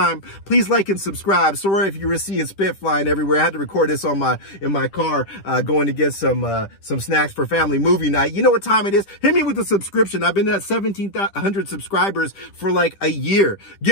Please like and subscribe. Sorry if you were seeing spit flying everywhere. I had to record this on in my car, going to get some snacks for family movie night. You know what time it is? Hit me with a subscription. I've been at 1,700 subscribers for like a year.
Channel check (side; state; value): right; late; 10 ms